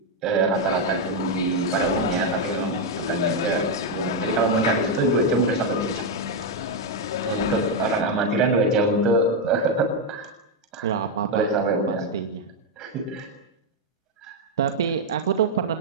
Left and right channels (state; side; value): normal; both; correlation 0.02